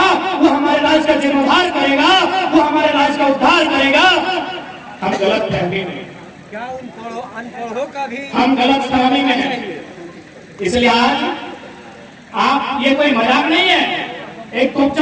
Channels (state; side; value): identical; both; correlation 1.00